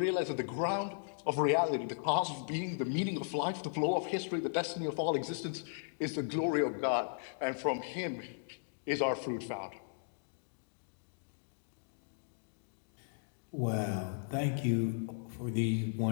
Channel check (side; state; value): right; silent; digital silence